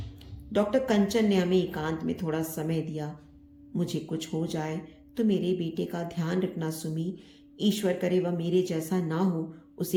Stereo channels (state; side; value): identical; both; correlation 1.00